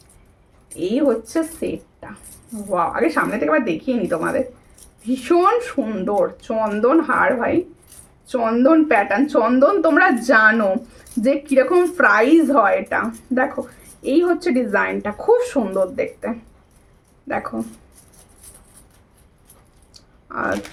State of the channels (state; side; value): identical; both; correlation 1.00